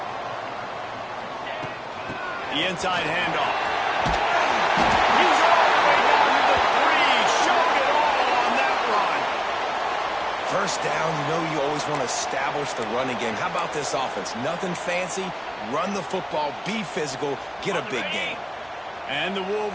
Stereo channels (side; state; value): both; identical; correlation 1.00